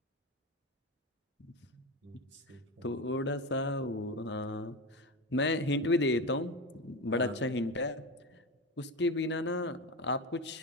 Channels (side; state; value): both; normal; correlation 0.21